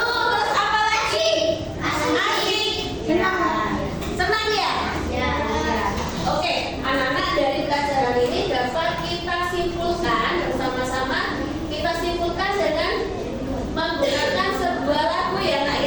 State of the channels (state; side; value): identical; both; correlation 1.00